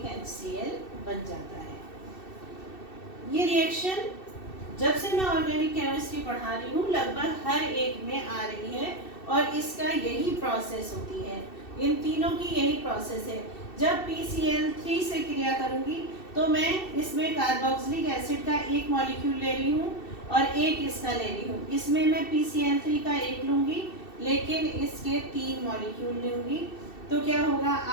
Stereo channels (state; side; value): late; right; 2.7 ms